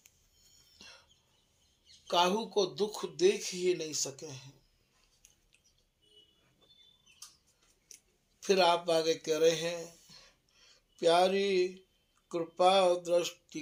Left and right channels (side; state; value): both; identical; correlation 1.00